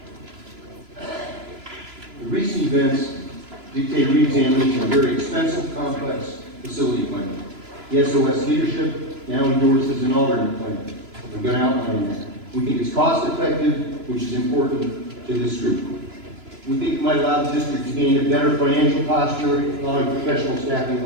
The recent events dictate re-examination of a very expensive, complex facility plan. The SOS leadership now endorses an alternate plan. I'm going to outline that. We think it's cost-effective, which is important to this group. We think it might allow the district to gain a better financial posture, allowing professional staffing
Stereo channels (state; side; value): late; left; 3.0 ms